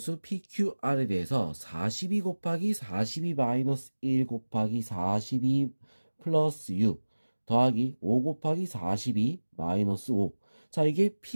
PQR에 대해서 42 곱하기 42 마이너스 1 곱하기 42 플러스 6 더하기 5 곱하기 42 마이너스 5. 자, 이게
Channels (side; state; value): both; inverted; correlation -1.00